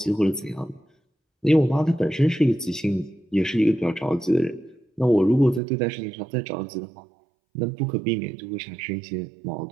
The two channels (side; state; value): left; drops out; at 5.6 s